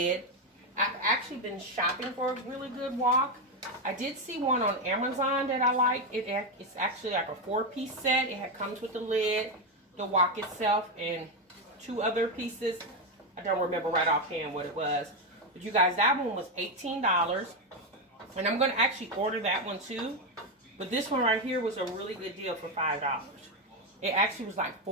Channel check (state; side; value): normal; both; correlation 0.08